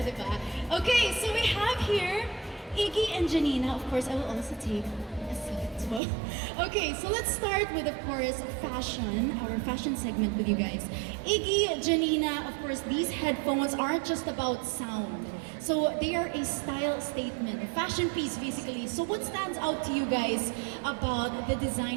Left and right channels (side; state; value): left; drops out; at 6.0 s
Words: diba? Okay, so we have here Iggy and Janina. Of course, I will also take a seat as well. Okay, so let's start with, of course, fashion, our fashion segment with you guys. Iggy, Janina, of course, these headphones aren't just about sound. So they are a style statement, a fashion piece basically. So what stands out to you guys about the